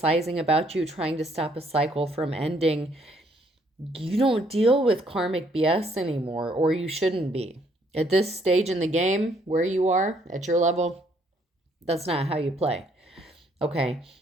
about you, trying to stop a cycle from ending, you don't deal with karmic BS anymore, or you shouldn't be. At this stage in the game, where you are, at your level, that's not how you play. Okay,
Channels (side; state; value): both; normal; correlation 0.67